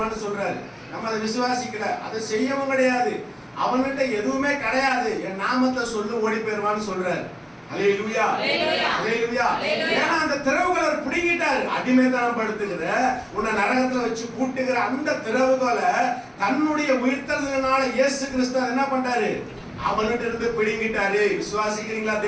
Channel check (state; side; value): identical; both; correlation 1.00